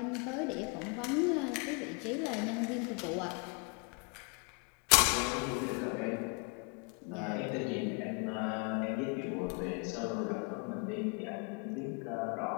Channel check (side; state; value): right; quieter; 33.3 dB